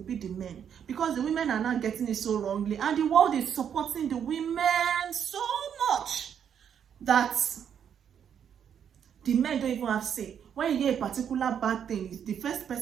be the men, because the women are not getting it so wrongly, and the world is supporting the women so much that the men don't even have say. When you hear a particular bad thing, the first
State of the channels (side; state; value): left; quieter; 8.4 dB